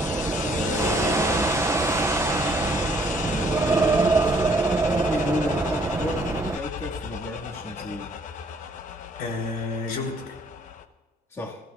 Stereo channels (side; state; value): both; normal; correlation 0.63